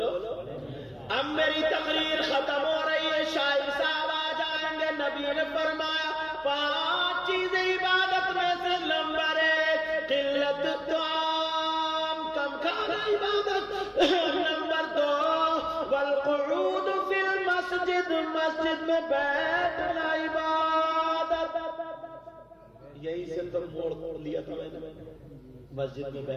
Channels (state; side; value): identical; both; correlation 1.00